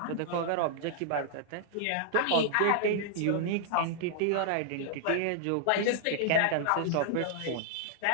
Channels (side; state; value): both; different; correlation -0.01